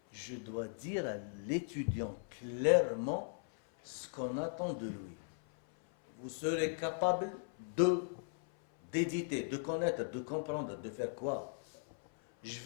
Je dois dire à l'étudiant clairement ce qu'on attend de lui. Vous serez capable d'éditer, de connaître, de comprendre, de faire quoi? Je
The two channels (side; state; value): right; silent; 52 dB below the other